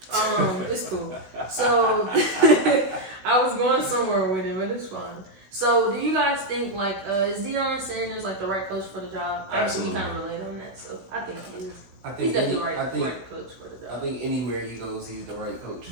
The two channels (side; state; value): left; late; 16 ms